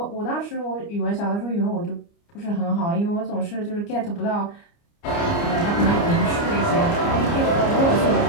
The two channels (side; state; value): right; late; 29 ms